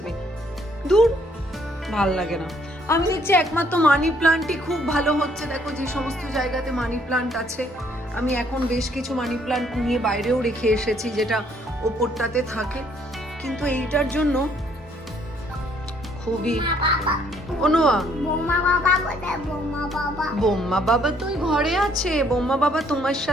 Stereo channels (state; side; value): normal; both; correlation 0.65